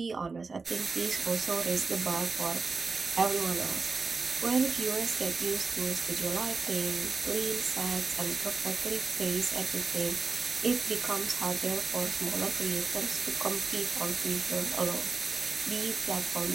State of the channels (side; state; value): left; quieter; 4.3 dB